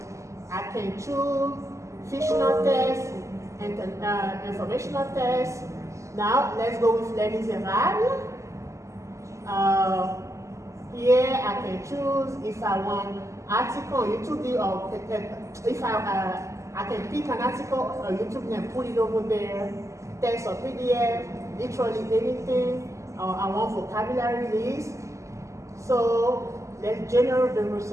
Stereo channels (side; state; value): left; late; 0.15 ms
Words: I can choose fictional test and informational test. Now let's go with Les Miserables. Here I can choose if I want article on YouTube or if I can pick an article on YouTube and put it over there, text or PDF, literally anything. I want vocabulary list. So let's generate the